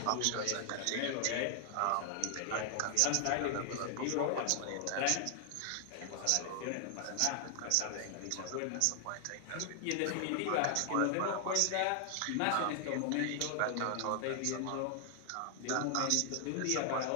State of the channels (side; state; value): both; different; correlation 0.00